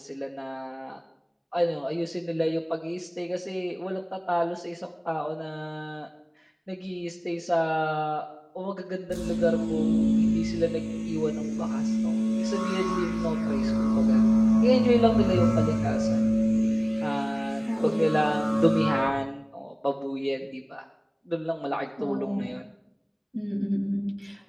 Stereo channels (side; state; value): both; identical; correlation 1.00